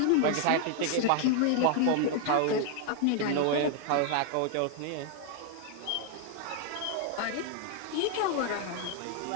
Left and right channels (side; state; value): both; different; correlation 0.00